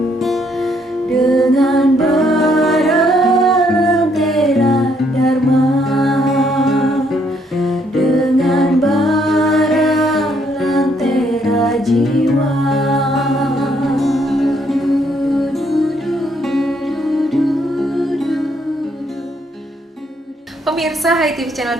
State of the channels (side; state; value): both; normal; correlation 0.71